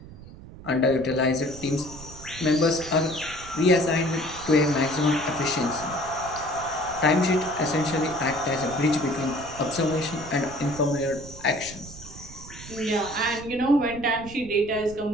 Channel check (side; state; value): right; noise; rumble, 15 dB below the sound